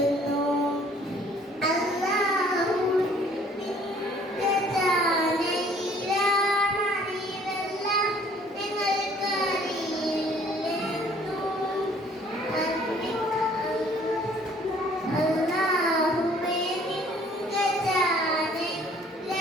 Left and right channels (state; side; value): normal; both; correlation 0.57